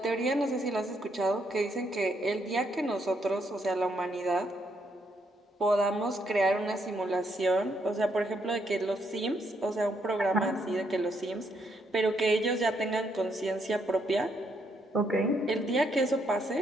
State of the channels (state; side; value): normal; both; correlation 0.75